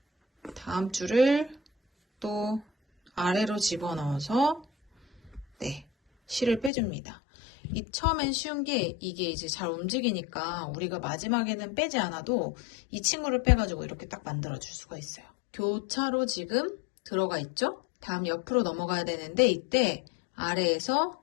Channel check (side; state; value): right; drops out; at 6.7 s